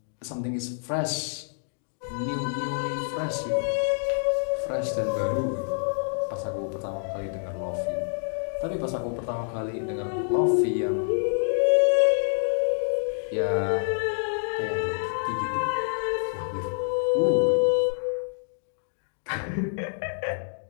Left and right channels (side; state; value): right; silent; digital silence